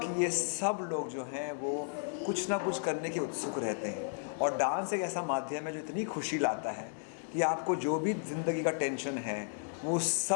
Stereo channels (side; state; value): right; silent; digital silence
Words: ये सब लोग जो हैं वो कुछ ना कुछ करने के उत्सुक रहते हैं, और डांस एक ऐसा माध्यम है जो इतनी खुशी लाता है कि आपको जो भी ज़िंदगी का टेंशन है वो